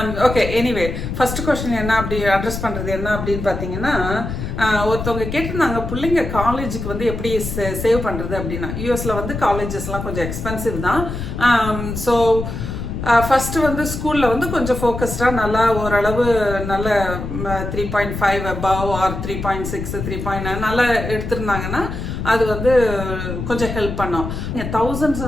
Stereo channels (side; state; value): left; noise; rumble, 5 dB below the sound